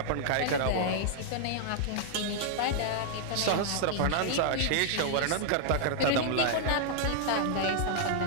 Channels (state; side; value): different; both; correlation -0.01